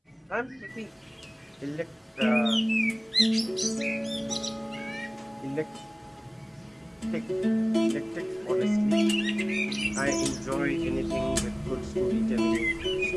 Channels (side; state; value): both; identical; correlation 1.00